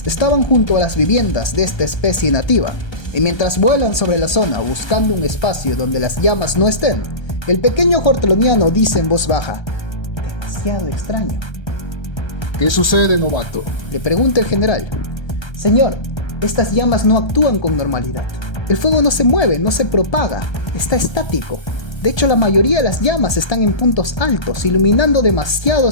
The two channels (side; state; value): right; late; 1.3 ms